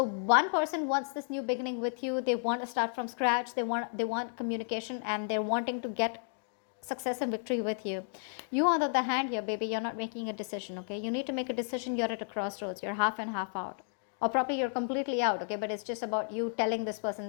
one person wants this new beginning with you. They want to start from scratch. They want communication, and they're wanting to get success and victory with you. You, on the other hand, here, baby, you're not making a decision. Okay, you need to make a decision. You're at a crossroads. You're half and half out, or probably you're completely out. Okay, but it's just about you telling this person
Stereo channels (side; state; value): right; silent; 56 dB below the other